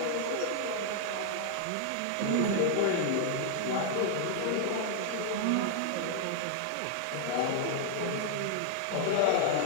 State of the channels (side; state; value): both; different; correlation -0.01